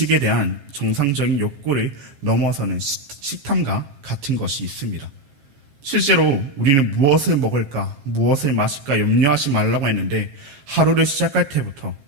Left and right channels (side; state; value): left; late; 14 ms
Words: 대한 정상적인 욕구를 넘어서는 식탐과 같은 것이 있습니다. 실제로 우리는 무엇을 먹을까, 무엇을 마실까 염려하지 말라고 했는데 하루를 시작할 때부터